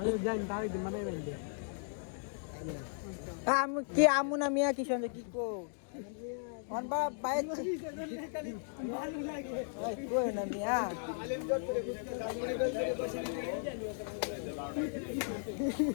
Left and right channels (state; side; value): silent; right; digital silence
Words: জানি তাই দিন মানে আমি কি আমু না মিয়া কি সঙ্গে কি কো অন বা বাইক ভালো লাগে ওই কই না মিয়া